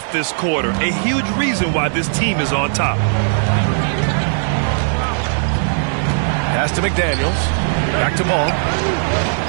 this quarter. A huge reason why this team is on top. Pass to McDaniels. Back to Ball.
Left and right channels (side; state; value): left; silent; 68 dB below the other